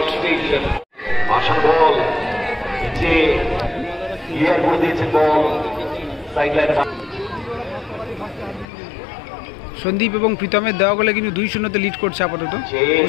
বল ক্লিয়ার করে দিয়েছে বল সাইডলাইন। সন্দীপ এবং প্রীতমের দেওয়া গোলে কিন্তু 2-0 লিড করছে আপাতত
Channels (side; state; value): right; drops out; at 8.7 s